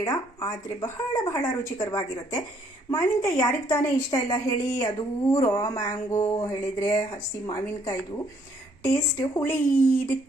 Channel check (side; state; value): both; normal; correlation 0.66